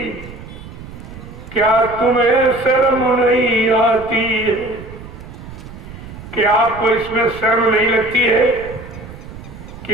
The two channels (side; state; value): right; noise; rumble, 14 dB below the sound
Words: क्या तुम्हें शर्म नहीं आती है? क्या आपको इसमें शर्म नहीं लगती है कि